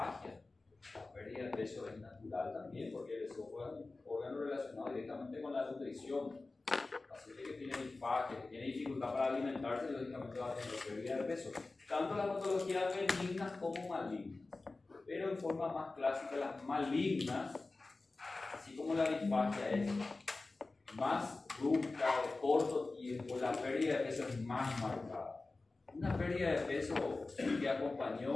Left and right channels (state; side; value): quieter; right; 3.4 dB